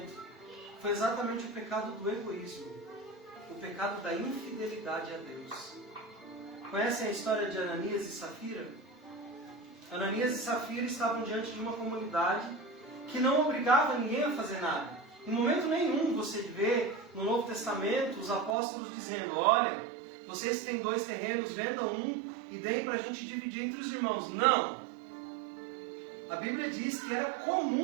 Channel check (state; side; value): drops out; left; at 18.6 s